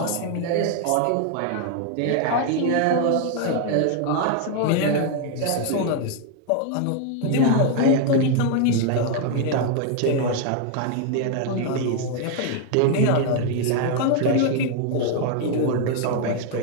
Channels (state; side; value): different; both; correlation 0.00